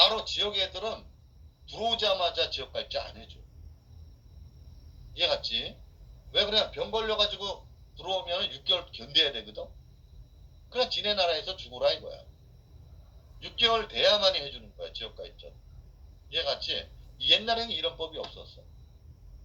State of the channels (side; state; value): both; identical; correlation 1.00